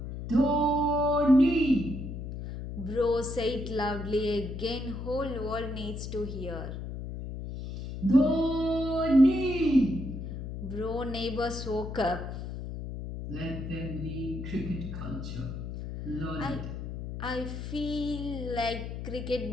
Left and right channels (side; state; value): left; noise; hum, 7 dB below the sound